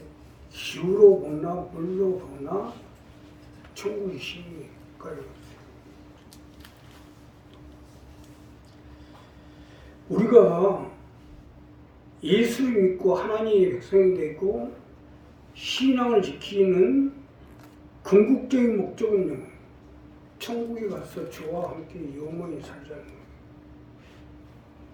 기후로 보나 물로 보나 천국이 심각해요. 우리가 예수를 믿고 하나님의 백성이 되고 신앙을 지키는 궁극적인 목적은요, 천국에 가서 주와 함께 영원히 살자는 거예요.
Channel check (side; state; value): both; identical; correlation 1.00